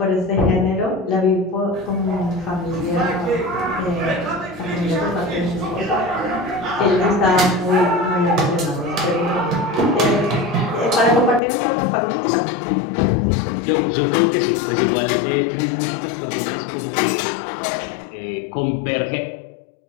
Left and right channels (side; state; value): right; drops out; at 11.4 s